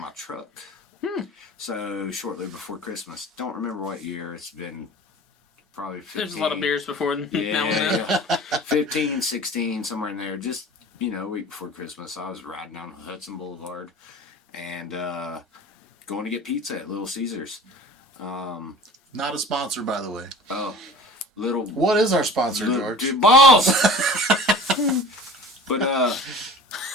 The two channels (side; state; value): both; normal; correlation 0.40